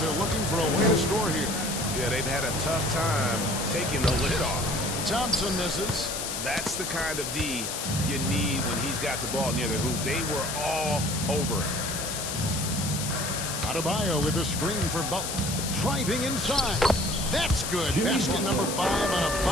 looking for a way to score here. Yeah, they've had a tough time taking the lid off. Thompson misses. That's the kind of D you need when he's got the ball near the hoop. They were all over it. Adebayo with a screen for Butler. Driving inside. That's good. Basket number 5 on a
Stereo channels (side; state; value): left; noise; hiss, 4 dB below the sound